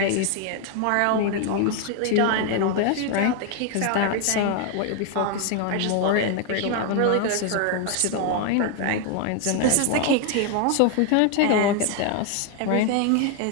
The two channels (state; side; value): different; both; correlation 0.00